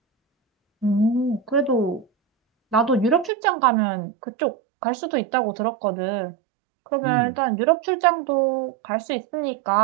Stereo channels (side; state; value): left; drops out; at 3.3 s